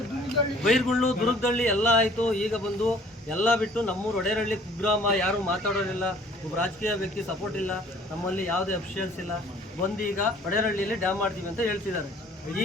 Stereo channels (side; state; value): both; normal; correlation 0.54